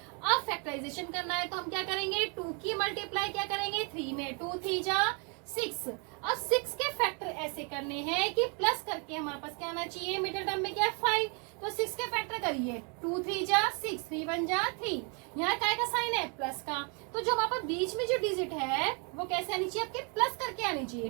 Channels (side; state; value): left; quieter; 35.2 dB